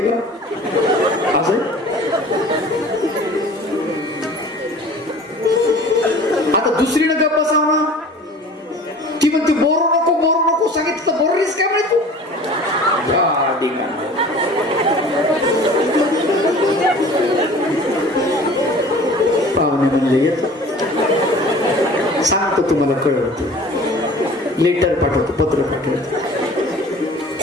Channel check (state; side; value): normal; both; correlation 0.44